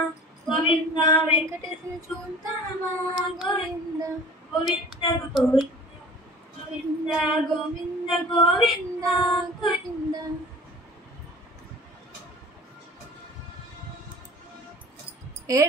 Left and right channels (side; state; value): both; normal; correlation 0.44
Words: గోవింద వెంకటేశ్వర చూద్దామా గోవింద గోవింద గోవింద గోవింద గోవింద గోవింద.